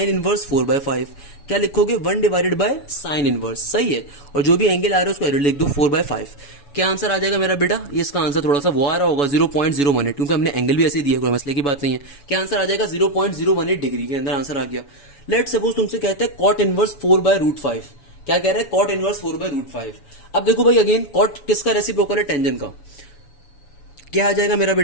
इनवर्स 4/5। क्या लिखोगे, 1 डिवाइडेड बाय साइन इनवर्स, सही है। और जो भी एंगल आ रहा है उसको एरो लिख दो 4/5। क्या आंसर आ जाएगा मेरा बेटा, ये इसका आंसर थोड़ा सा वो आ रहा होगा 0.018, क्योंकि हमने एंगल भी ऐसे दिया, कोई मसले की बात नहीं है। क्या आंसर आ जाएगा, 0.018 डिग्री के अंदर आंसर आ गया। लेट सपोज तुमसे कहते हैं कॉट इनवर्स 4/√5। क्या कह रहा है, कॉट इनवर्स 4/√5। अब देखो भाई अगेन कॉट किसका रेसिप्रोकल है, टेंजेंट का। क्या आ जाएगा मेरा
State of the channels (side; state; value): right; late; 7.1 ms